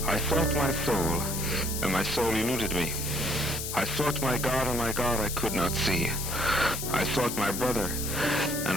I sought my soul, and my soul eluded me. I sought my God, and my God I could not see. I sought my brother,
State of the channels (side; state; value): left; noise; hiss, 5 dB below the sound